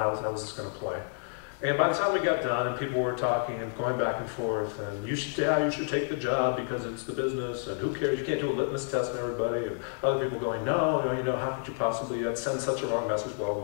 was this going to play? And by the time we got done and people were talking and going back and forth, and you should take the job because it's the business, and who cares, you can't do a litmus test on everybody, and other people going, no, how could you possibly send such a wrong message, blah, blah,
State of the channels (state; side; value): silent; right; 58 dB below the other